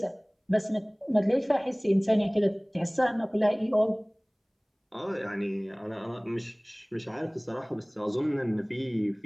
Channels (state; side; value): identical; both; correlation 1.00